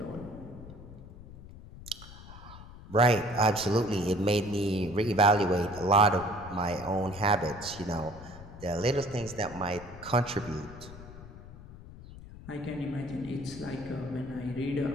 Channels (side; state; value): left; noise; rumble, 16 dB below the sound